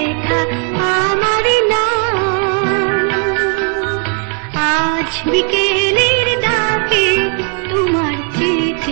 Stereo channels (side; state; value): left; quieter; 39.3 dB